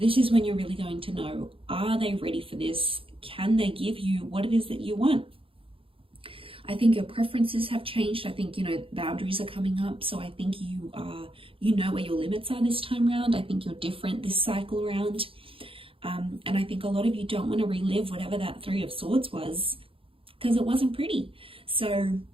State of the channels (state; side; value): late; left; 0.26 ms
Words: is when you're really going to know, are they ready for this? Can they give you what it is that you want? I think your preferences have changed. I think, boundaries are coming up. So I think you know where your limits are this time around. I think you're different this cycle around. And I think a lot of you don't want to relive whatever that Three of Swords was, because it wasn't pretty. So